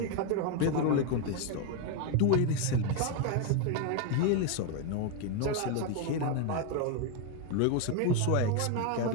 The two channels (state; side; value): different; both; correlation 0.01